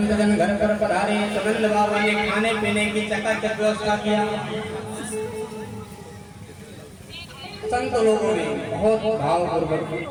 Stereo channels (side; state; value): both; identical; correlation 1.00